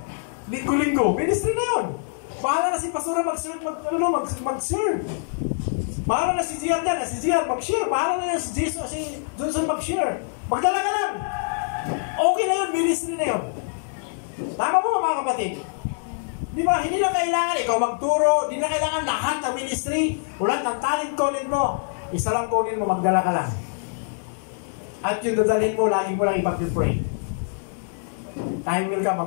Linggo-linggo. Ministry na yun. Bahala na si Pastora mag-serve. Bahala na si Gian dyan. Si Gian mag-share. Bahala na si Jesus, si Johnson mag-share. Magdala ka lang. Okay na yun. Ministry na yun. Tama po mga kapatid. Di ba? Hindi na kailangan ikaw magturo. Hindi na kailangan lahat ng ministry. Ulat ng talent calling mo. Isa lang calling mo. Magdala ka lang. At yung dadalhin mo, lagi mo lang ipag-pray. Time will ka,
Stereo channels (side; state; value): right; silent; digital silence